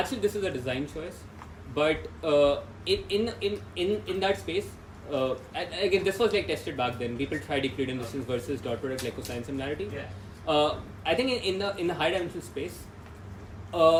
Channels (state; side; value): identical; both; correlation 1.00